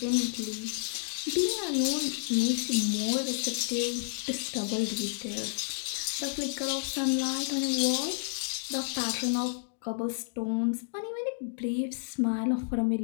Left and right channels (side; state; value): right; silent; digital silence